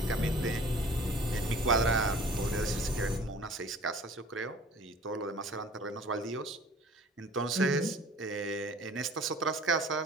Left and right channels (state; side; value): normal; both; correlation 0.48